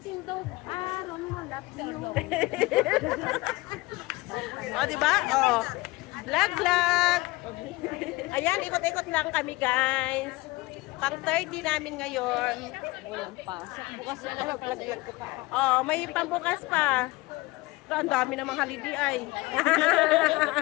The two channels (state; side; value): quieter; right; 21.7 dB